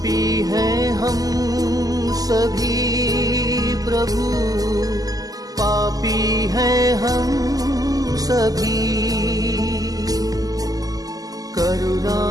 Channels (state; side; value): late; left; 0.17 ms